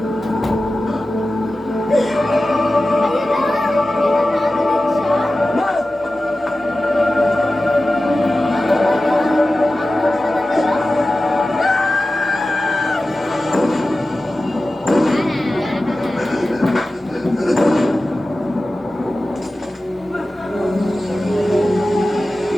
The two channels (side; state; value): both; normal; correlation 0.95